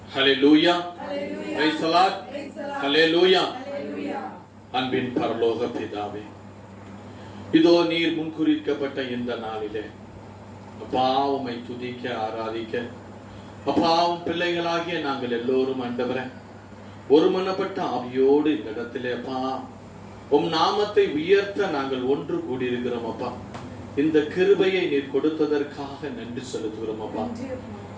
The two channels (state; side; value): identical; both; correlation 1.00